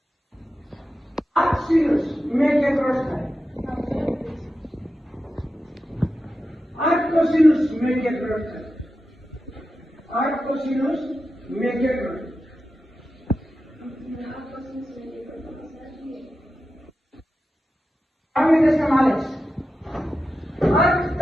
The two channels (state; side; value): normal; both; correlation 0.91